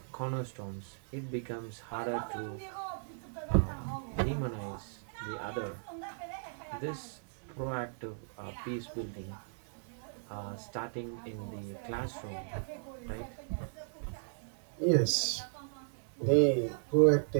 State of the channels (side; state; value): left; silent; digital silence